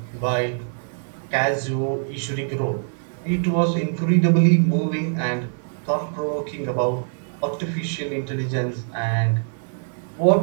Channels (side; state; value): left; silent; digital silence